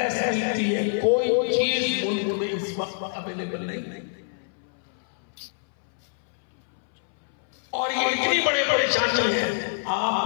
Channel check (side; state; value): right; silent; 61 dB below the other